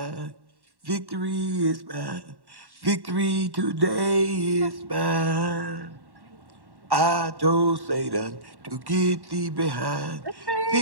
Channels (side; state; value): left; late; 1.1 ms